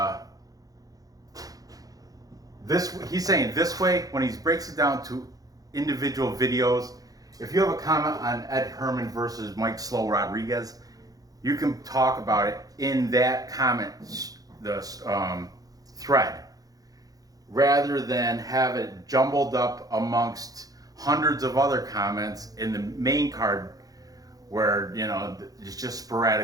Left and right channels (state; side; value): late; left; 0.18 ms